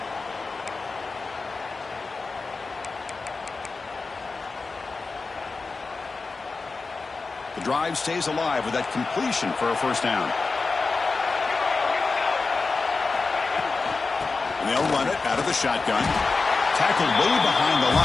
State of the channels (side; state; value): right; quieter; 4.1 dB